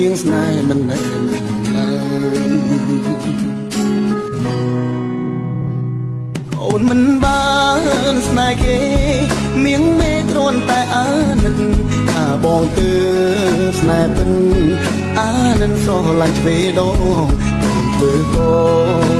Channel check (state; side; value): identical; both; correlation 1.00